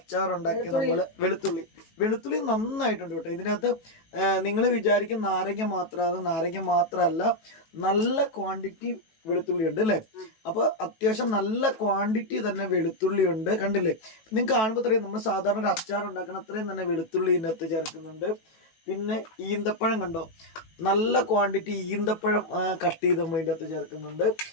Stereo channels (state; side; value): late; right; 18 ms